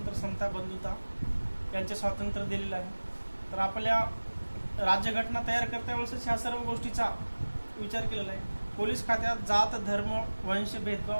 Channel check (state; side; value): inverted; both; correlation -1.00